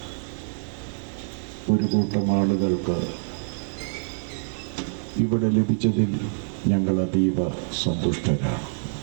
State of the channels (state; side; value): silent; left; digital silence